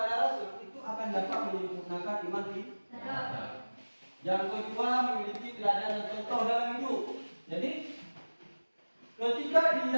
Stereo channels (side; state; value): both; inverted; correlation -1.00